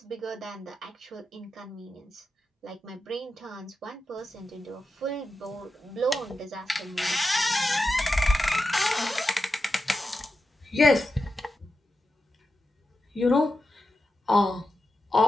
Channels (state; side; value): normal; both; correlation 0.89